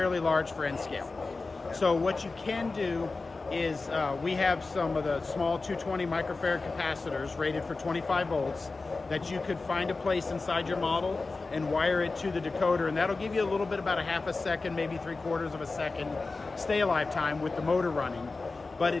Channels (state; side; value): quieter; right; 3.8 dB